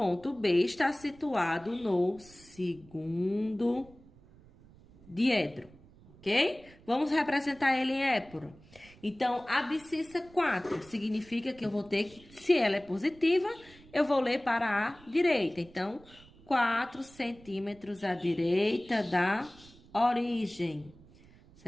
B está situado no segundo diedro, ok? Vamos representar ele em épora. Então, abscissa 4 significa que eu vou ter que, se ela é positiva, eu vou ler para a direita. Então, 4 centímetros à direita da origem,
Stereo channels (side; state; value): right; noise; rumble, 24 dB below the sound